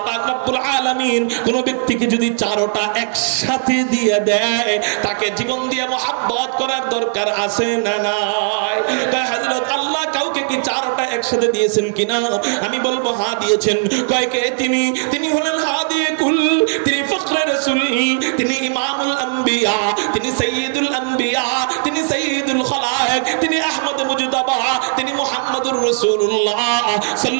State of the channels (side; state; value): left; silent; 65 dB below the other